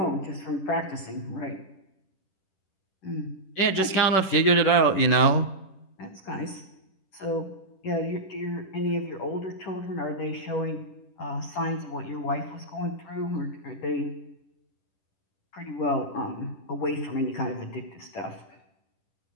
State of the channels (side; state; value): right; late; 10 ms